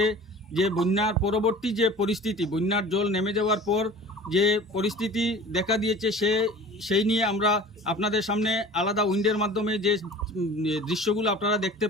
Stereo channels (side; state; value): both; normal; correlation 0.42